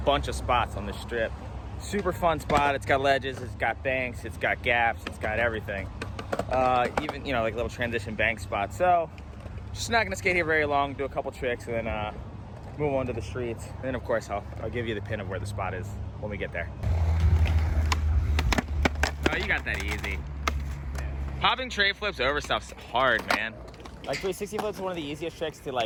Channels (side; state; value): both; identical; correlation 1.00